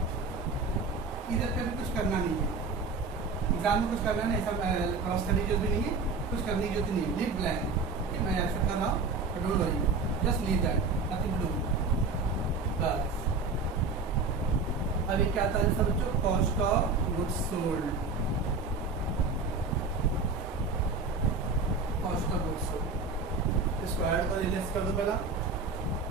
इधर पे भी कुछ करना नहीं है, एग्जाम में कुछ करना नहीं, ऐसा क्रॉस करने की जरूरत भी नहीं है, कुछ करने की जरूरत नहीं है, लीव ब्लैंक। मैं ऐसा कर रहा हूँ, don't worry, just leave that, nothing to do, बस। अभी क्या था सब बच्चों, cost of goods sold, cost of goods sold. इसको ऐड कर लेस कर दो पहला,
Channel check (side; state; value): left; quieter; 4.0 dB